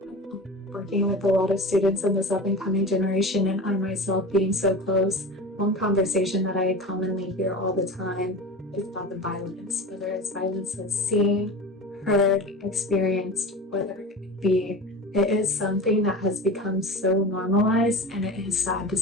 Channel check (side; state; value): both; normal; correlation 0.31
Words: Working with a lot of students in this up-and-coming generation, and I myself being so close, one conversation that I commonly hear all the time is about the violence, whether it's violence that's seen, heard, experienced, whatever it be. It is something that has become so normalized, and it is sad to